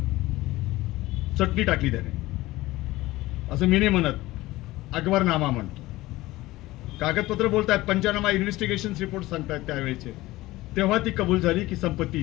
चटणी टाकली त्याने. असं मी नाही म्हणत, अकबरनामा म्हणतो. कागदपत्र बोलतात, पंचनामा इन्व्हेस्टिगेशन रिपोर्ट सांगतात त्यावेळेचे. तेव्हा ती कबूल झाली की संपत्ती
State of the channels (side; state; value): right; quieter; 18.3 dB